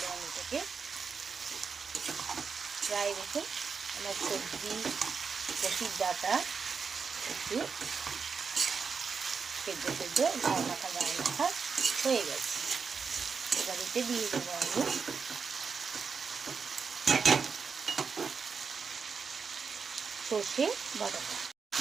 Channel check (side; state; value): left; quieter; 5.6 dB